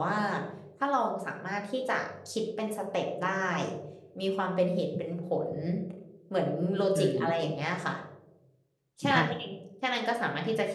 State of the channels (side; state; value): both; identical; correlation 1.00